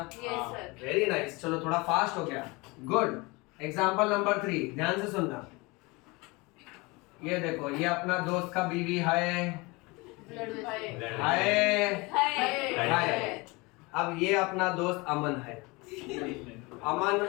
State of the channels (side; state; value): right; quieter; 25.2 dB